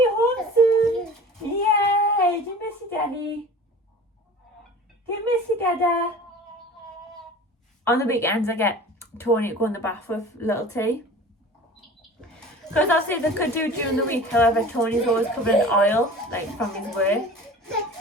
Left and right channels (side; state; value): both; normal; correlation 0.40